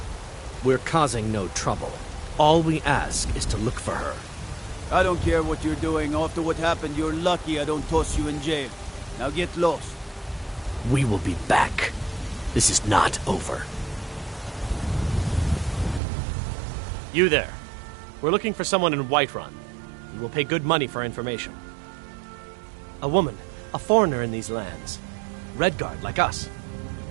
We're causing no trouble. All we ask is to look for her. I don't care what you're doing. After what happened, you're lucky I don't toss you in jail. Now get lost. We will be back. This is not over. You there. We're looking for someone in Whiterun. We will pay good money for information. A woman, a foreigner in these lands. Redguard, like us.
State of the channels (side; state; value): left; drops out; at 16.0 s